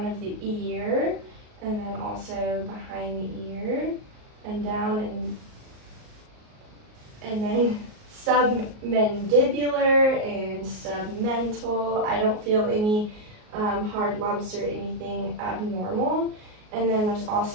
of the ear, and then also behind the ear, and down, and then submandibular and submental. I don't feel any hard lumps or anything abnormal. And then there's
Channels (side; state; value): left; late; 38 ms